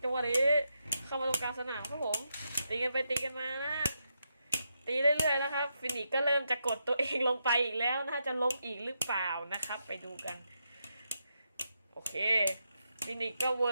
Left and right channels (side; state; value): both; inverted; correlation -0.83